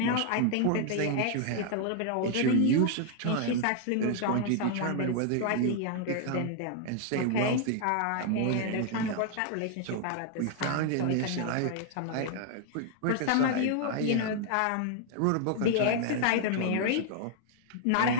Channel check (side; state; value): both; different; correlation 0.00